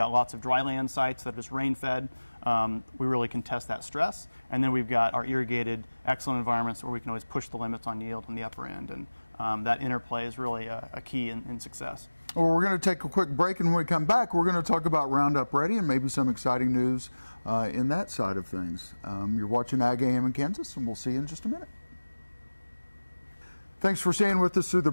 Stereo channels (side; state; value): both; inverted; correlation -1.00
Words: lots of dry land sites that are just rain-fed. We really can test that stress. And then we've got our irrigated, excellent environments where we can always push the limits on yield on the upper end. And that interplay is really a key in success. Well, we're going to take a quick break, and when we come back, we're going to talk about Roundup Ready and maybe some exciting news in that side of things. You're watching Ag AM in Kansas, and we'll see you in just a minute. Thanks for staying with us through the